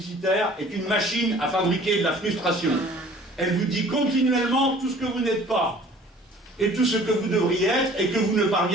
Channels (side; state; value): both; normal; correlation 0.50